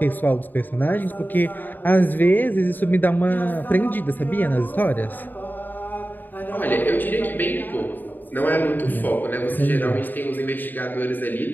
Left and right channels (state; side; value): late; right; 0.089 ms